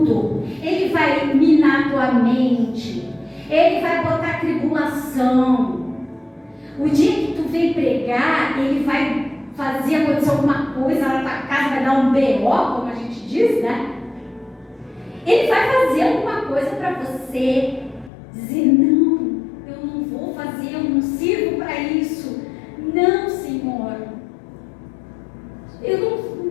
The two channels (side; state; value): right; drops out; at 18.1 s